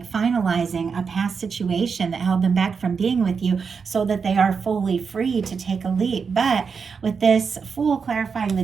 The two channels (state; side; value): quieter; left; 5.7 dB